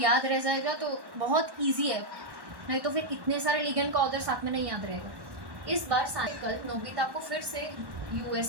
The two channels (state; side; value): late; left; 1.1 ms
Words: रह जाएगा तो बहुत इजी है, नहीं तो फिर इतने सारे लिगेंड का ऑर्डर साथ में नहीं याद रहेगा। इस बार सानिया कल नोबिता को फिर से